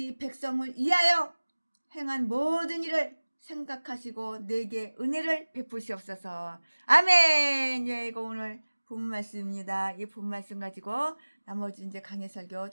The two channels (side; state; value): both; inverted; correlation -1.00